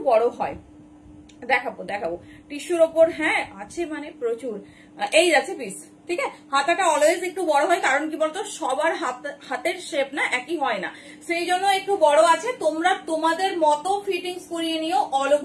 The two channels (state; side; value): identical; both; correlation 1.00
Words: বড় হয়, দেখাবো দেখাবো টিস্যুর ওপর, হ্যাঁ আছে মানে প্রচুর। এই যাচ্ছে পিস, ঠিক আছে, হাতাটা অলওয়েজ একটু বড় হয়, কারণ কি বলতো সবার হাতের শেপ না একই হয় না, সেই জন্য একটু বড় আছে। তোমরা তোমাদের মতো ফিটিংস করিয়ে নিও, অল